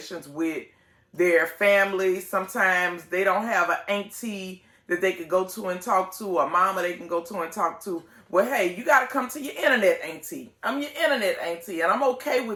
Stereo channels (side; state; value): both; identical; correlation 1.00